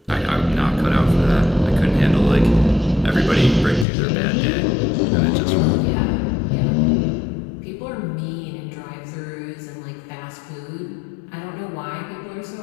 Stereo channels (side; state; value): right; drops out; at 3.9 s